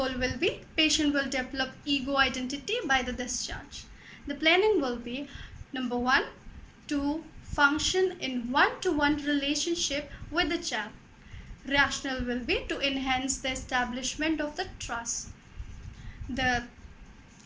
will be patient will develop ego identity by the discharge. The planning will be number 1, to function in one-to-one relationship with the child. Rationale will be to enhance the establishment of the trust. The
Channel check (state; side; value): identical; both; correlation 1.00